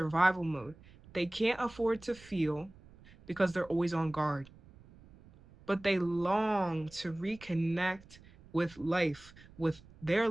mode. They can't afford to feel because they're always on guard, but they long to reconnect with life, with their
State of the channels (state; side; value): noise; right; rumble, 23 dB below the sound